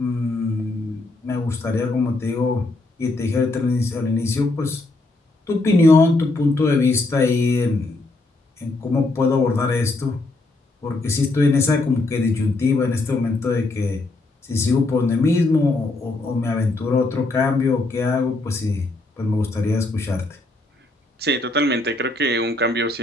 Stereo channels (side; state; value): right; quieter; 3.0 dB